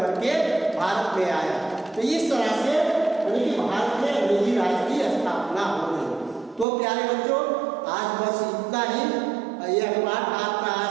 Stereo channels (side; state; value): left; drops out; at 6.7 s